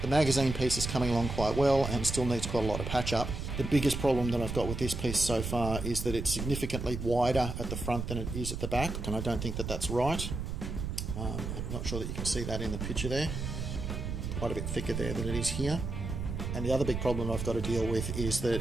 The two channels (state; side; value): noise; right; rumble, 4 dB below the sound